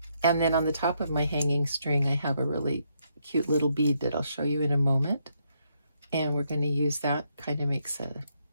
And then on the top of my hanging string, I have a really cute little bead that I'll show you in a moment. And we're going to use that. Kind of makes a,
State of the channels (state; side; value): inverted; both; correlation -0.76